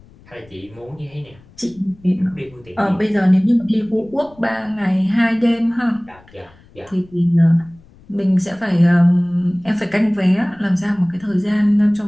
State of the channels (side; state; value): left; noise; rumble, 26 dB below the sound